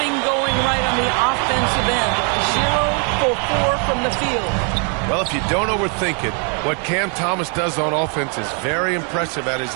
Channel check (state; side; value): quieter; left; 38.7 dB